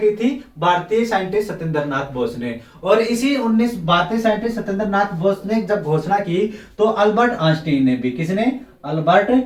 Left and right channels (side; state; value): both; identical; correlation 1.00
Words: थी, भारतीय साइंटिस्ट सत्येंद्र नाथ बोस ने। और इसी भारतीय साइंटिस्ट सत्येंद्र नाथ बोस ने जब घोषणा की तो अल्बर्ट आइंस्टाइन ने भी, किसने, अल्बर्ट